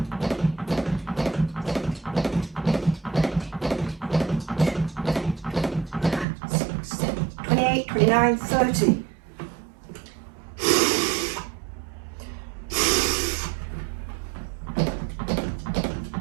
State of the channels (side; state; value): left; drops out; at 6.2 s